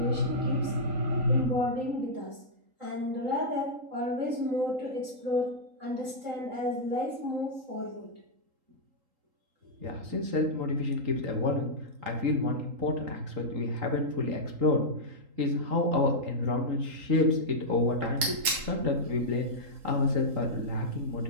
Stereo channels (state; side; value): late; left; 3.8 ms